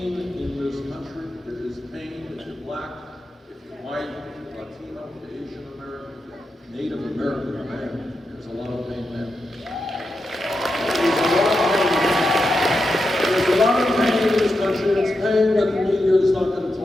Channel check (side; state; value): both; normal; correlation 0.87